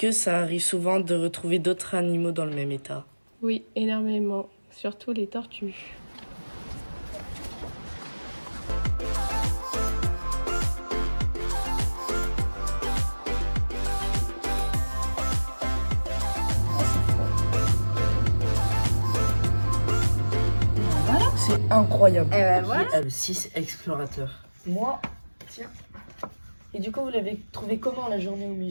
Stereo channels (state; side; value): inverted; both; correlation -1.00